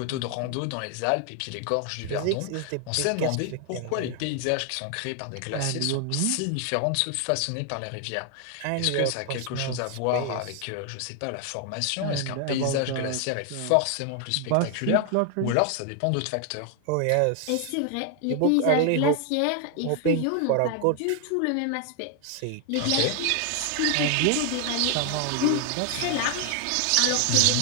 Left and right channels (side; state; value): both; different; correlation 0.00